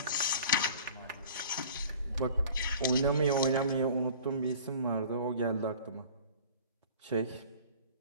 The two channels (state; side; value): inverted; both; correlation -0.45